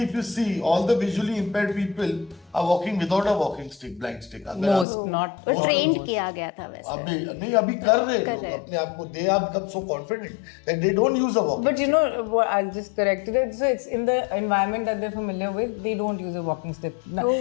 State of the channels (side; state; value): right; drops out; at 4.9 s